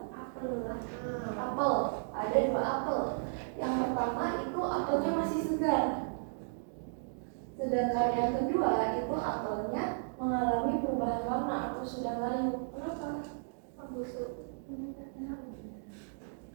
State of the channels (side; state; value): left; silent; digital silence